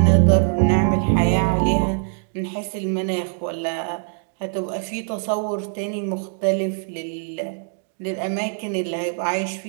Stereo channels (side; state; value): left; silent; 64 dB below the other